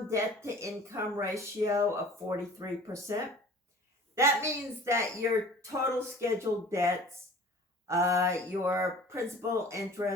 debt to income ratio of 43%. That means that your total scheduled debts, your principal,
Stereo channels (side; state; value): both; normal; correlation 0.45